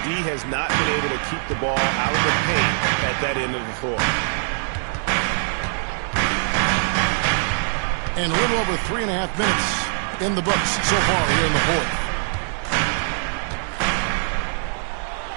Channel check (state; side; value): silent; left; digital silence